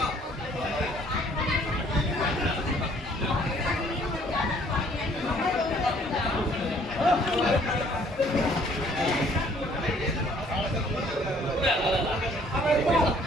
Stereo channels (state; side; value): normal; both; correlation 0.60